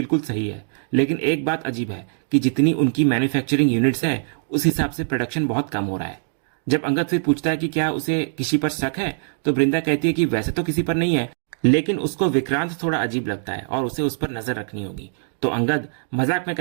सही है, लेकिन एक बात अजीब है कि जितनी उनकी मैन्युफैक्चरिंग यूनिट्स है उस हिसाब से प्रोडक्शन बहुत कम हो रहा है। जब अंगद फिर पूछता है कि क्या उसे किसी पर शक है, तो वृंदा कहती है कि वैसे तो किसी पर नहीं है, लेकिन उसको विक्रांत थोड़ा अजीब लगता है और उसे उस पर नजर रखनी होगी। तो अंगद मजाक में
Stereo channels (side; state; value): left; silent; digital silence